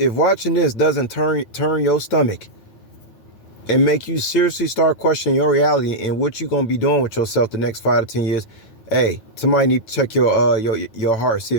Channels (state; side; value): late; right; 9.1 ms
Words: watching this doesn't turn your stomach and make you seriously start questioning your reality and what you're gonna be doing with yourself the next 5 to 10 years, hey, somebody need to check your heart, see